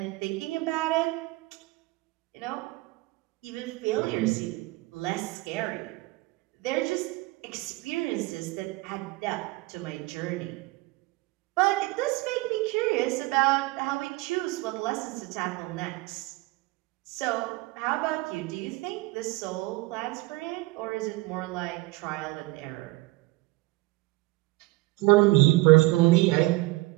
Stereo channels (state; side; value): quieter; left; 21.9 dB